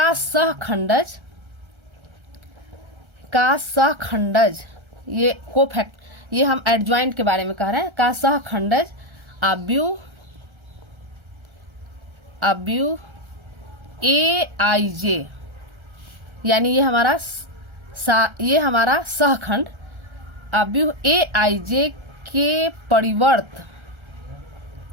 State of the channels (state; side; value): late; left; 1.3 ms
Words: सहखंडज ये कोफैक्ट, ये हम एडजॉइंट के बारे में कह रहे हैं, का सहखंडज आव्यूह AIJ यानी ये हमारा सहखंड आव्यूह AIJ के परिवर्त